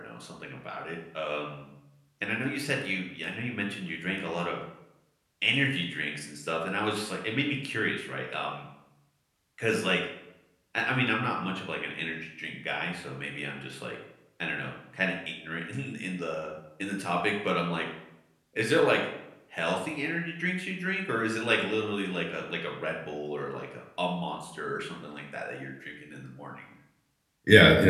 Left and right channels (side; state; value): both; identical; correlation 1.00